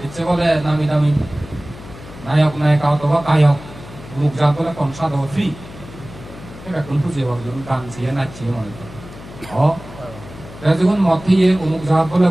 ইচ্ছে বলে নামি দামি নায়ক নায়িকা অথবা গায়ক মুখ যা বলে কনসার্ট হবে ফ্রি এখন বুঝিয়ে গান ছিয়ে নাচিয়ে মনে যখন মতিয়ে অমুক জাহাজ বলে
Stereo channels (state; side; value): noise; left; hum, 16 dB below the sound